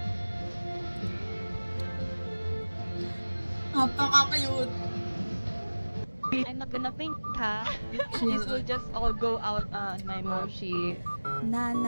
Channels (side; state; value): both; inverted; correlation -1.00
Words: Napaka-cute. I'm not gonna faint, ha? This will just all go out on my moshi. Na,